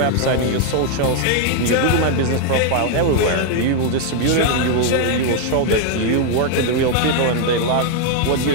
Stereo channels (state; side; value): different; both; correlation 0.00